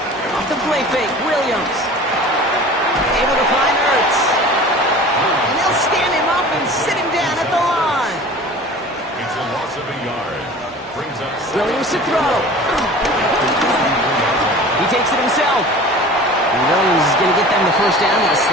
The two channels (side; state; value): both; normal; correlation 0.41